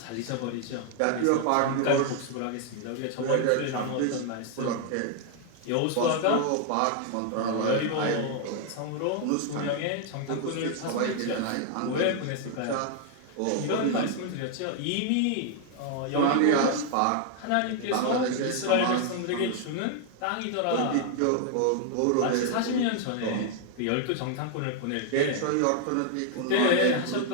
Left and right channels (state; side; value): different; both; correlation 0.00